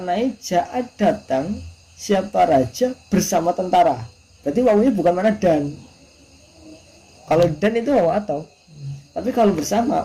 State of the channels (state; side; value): identical; both; correlation 1.00